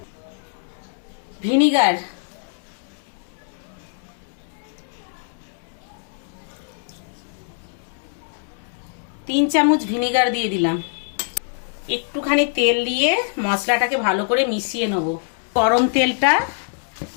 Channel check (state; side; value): silent; right; 63 dB below the other